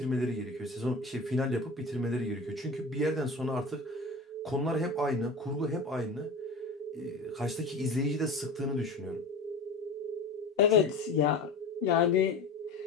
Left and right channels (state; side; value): quieter; right; 3.2 dB